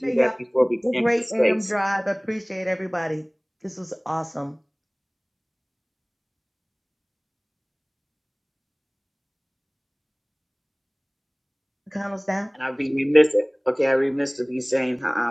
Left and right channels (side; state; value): both; identical; correlation 1.00